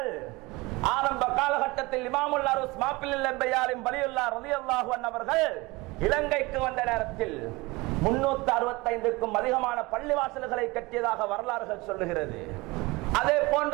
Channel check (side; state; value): left; quieter; 22.9 dB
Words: ஆரம்ப காலகட்டத்தில் இமாமுல் அருஸ் மாப்பில் லெம்பையாரின் வலியுல்லாஹ் ரலியல்லாஹு அன்ஹு அவர்கள் இலங்கைக்கு வந்த நேரத்தில் 365க்கும் அதிகமான பள்ளிவாசல்களை கட்டியதாக வரலாறுகள் சொல்லுகிறது. அதே